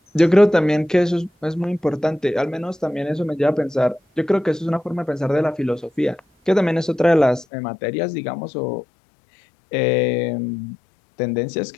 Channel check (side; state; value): right; drops out; at 7.5 s